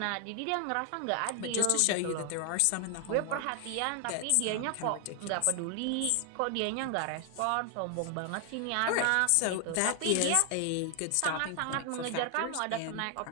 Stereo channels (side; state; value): both; different; correlation 0.00